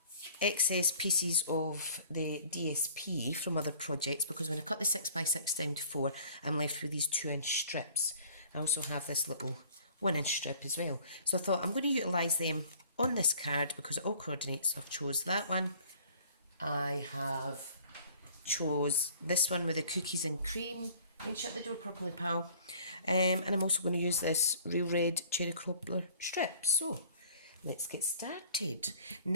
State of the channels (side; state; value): both; inverted; correlation -0.53